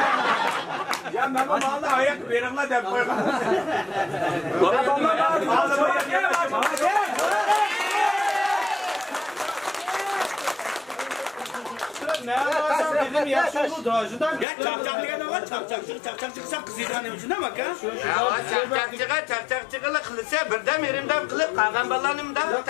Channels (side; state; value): right; drops out; at 14.5 s